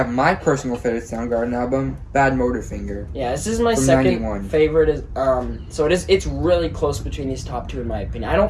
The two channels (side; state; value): both; identical; correlation 1.00